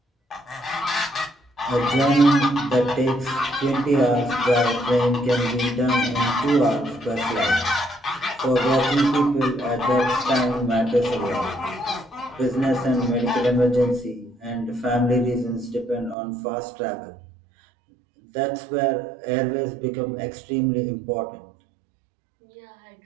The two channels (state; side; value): drops out; left; at 16.2 s